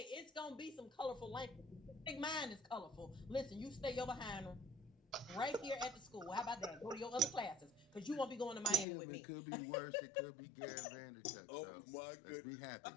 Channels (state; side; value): drops out; right; at 8.8 s